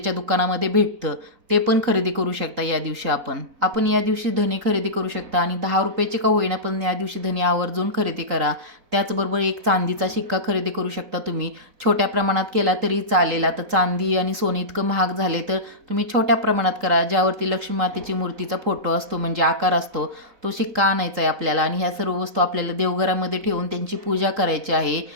दुकानामध्ये भेटतं, ते पण खरेदी करू शकता या दिवशी. आपण या दिवशी धने खरेदी करू शकता आणि 10 रुपयाचे का होईना पण या दिवशी धने आवर्जून खरेदी करा. त्याचबरोबर एक चांदीचा शिक्का खरेदी करू शकता तुम्ही. छोट्या प्रमाणात केला तरी चालेल. आता चांदी आणि सोने इतकं महाग झाले तर तुम्ही छोट्या प्रमाणात करा. ज्यावरती लक्ष्मी मातेची मूर्तीचा फोटो असतो म्हणजे आकार असतो, तो शिक्का आणायचा आहे आपल्याला. आणि ह्या सर्व वस्तू आपल्याला देवघरामध्ये ठेवून त्यांची पूजा करायची आहे.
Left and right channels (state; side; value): late; left; 3.8 ms